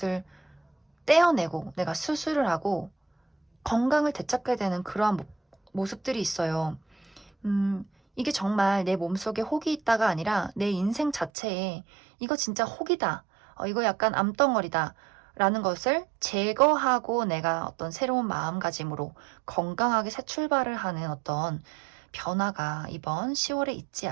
떼어내고 내가 수술을 하고 건강을 되찾게 되는 그러한 모습들이 있어요. 이게 정말 내 몸속에 혹이 있다가 아니라 내 인생 자체에 이거 진짜 혹이다, 이거 약간 암덩어리다 라는 것을 제거하고 내가 어떤 새로운 마음가짐으로 건강하게 새 출발을 하는 어떤 변화가 이번 10월에 있지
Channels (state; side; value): drops out; left; at 11.3 s